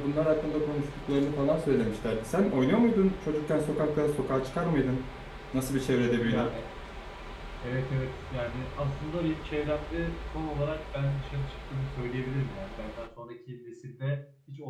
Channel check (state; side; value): identical; both; correlation 1.00